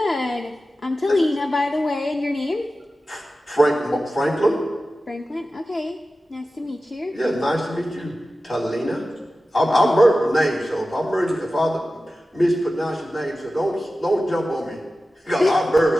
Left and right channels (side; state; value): both; normal; correlation 0.94